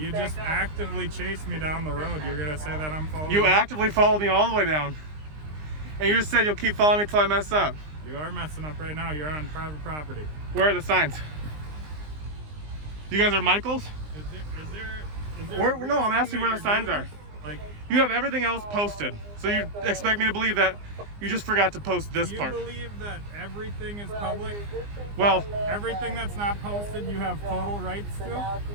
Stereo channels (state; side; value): late; left; 20 ms